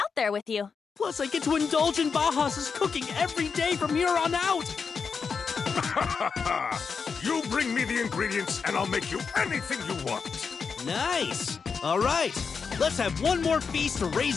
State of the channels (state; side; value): quieter; right; 5.6 dB